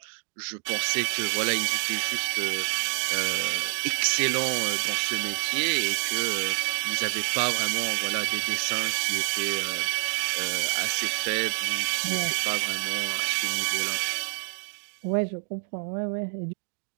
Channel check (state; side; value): silent; left; digital silence